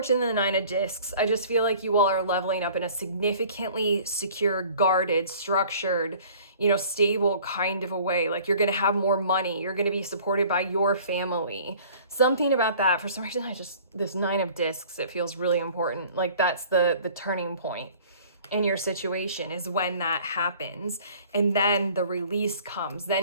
and the Nine of Discs, I just feel like you all are leveling up in a significantly secure, guarded, structured, you know, stable kind of a way. Like you're going to have more money. You're going to be supported by your family. Something about that. For some reason, this Nine of Discs, it feels really important. Like that's the turning point in your situation, is when that happens. And then the release comes.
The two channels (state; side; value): inverted; both; correlation -0.50